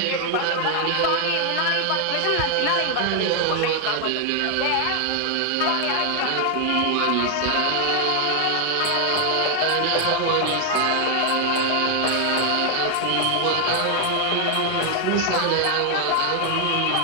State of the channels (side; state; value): both; different; correlation 0.00